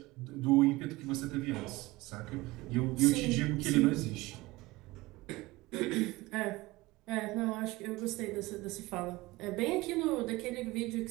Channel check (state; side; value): quieter; left; 20.6 dB